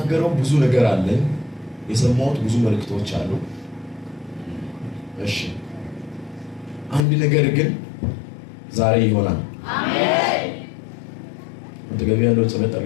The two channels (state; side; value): drops out; right; at 7.1 s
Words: ብዙ ነገር አለ። የሰማሁት ብዙ መልእክቶች አሉ። እሺ አንድ ነገር ግን ዛሬ ይሆናል። አሜን። ወደገቢ ያለው ጸሎት